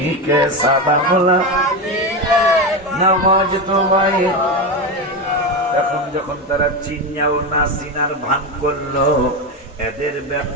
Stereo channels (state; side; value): normal; both; correlation 0.15